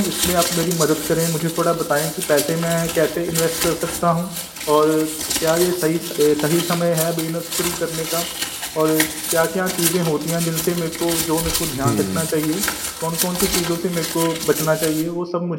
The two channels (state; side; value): identical; both; correlation 1.00